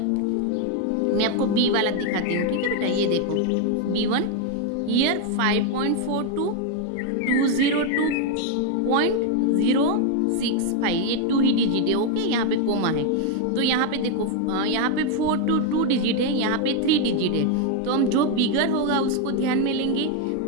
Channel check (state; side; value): different; both; correlation 0.01